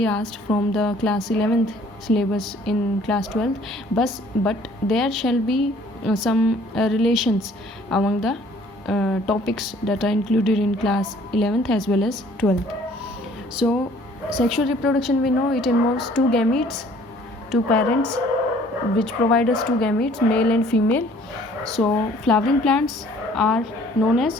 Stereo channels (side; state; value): both; normal; correlation 0.56